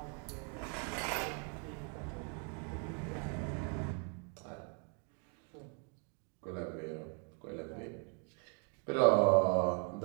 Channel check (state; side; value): quieter; left; 39.7 dB